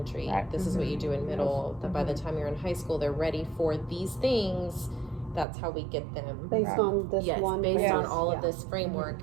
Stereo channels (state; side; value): drops out; left; at 5.5 s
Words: Right. This is what you do in middle. That by the time you're in high school, they're ready for these things. That's how we get them. Based Right. on this Yes, one. based on Yes. all Yeah. of this framework,